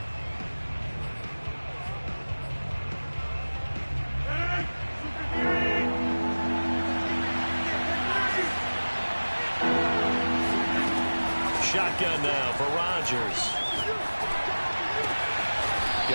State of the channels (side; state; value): both; inverted; correlation -1.00